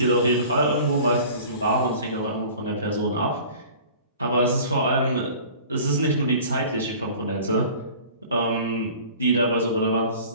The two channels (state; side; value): inverted; both; correlation -0.44